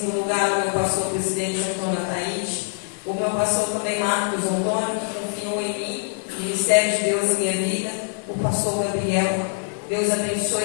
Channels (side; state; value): right; silent; 63 dB below the other